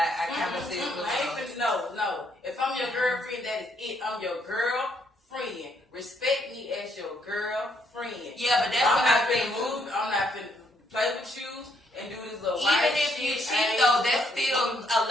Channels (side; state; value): both; normal; correlation 0.72